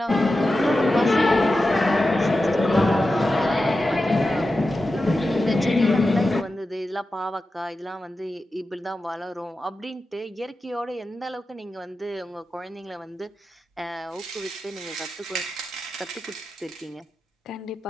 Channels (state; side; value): normal; both; correlation 0.92